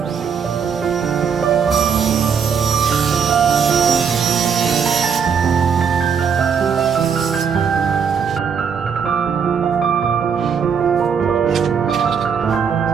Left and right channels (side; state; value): left; quieter; 6.8 dB